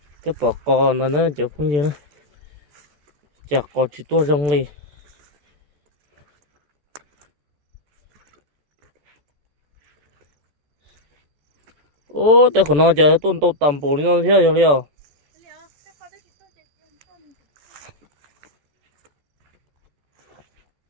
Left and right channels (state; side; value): late; left; 14 ms